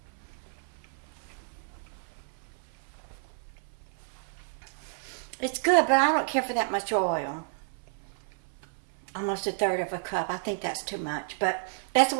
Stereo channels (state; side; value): silent; left; 55 dB below the other